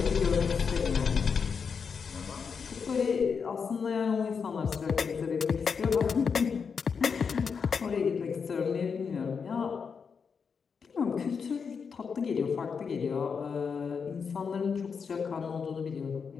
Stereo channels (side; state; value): right; quieter; 5.9 dB